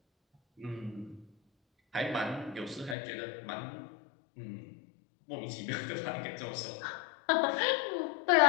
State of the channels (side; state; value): right; drops out; at 3.0 s